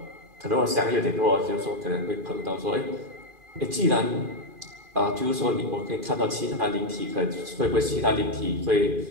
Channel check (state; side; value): late; left; 2.4 ms